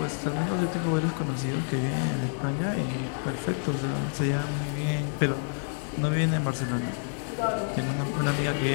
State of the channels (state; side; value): silent; right; 59 dB below the other